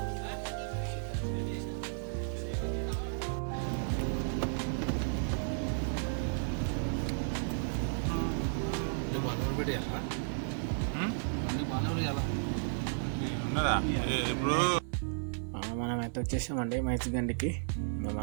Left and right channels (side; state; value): left; silent; 55 dB below the other